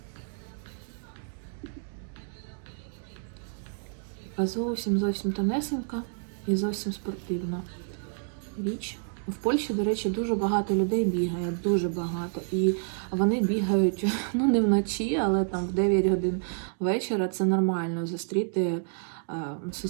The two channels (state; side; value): silent; left; 59 dB below the other